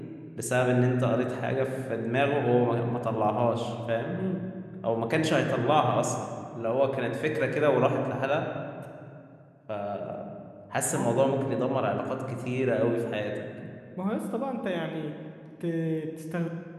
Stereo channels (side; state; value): both; identical; correlation 1.00